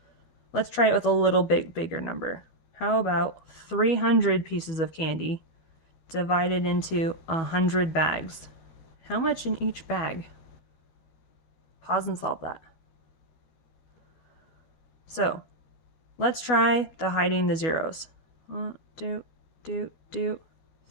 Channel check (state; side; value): late; right; 12 ms